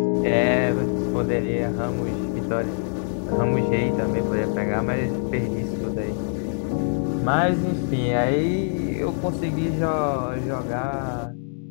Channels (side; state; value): right; silent; digital silence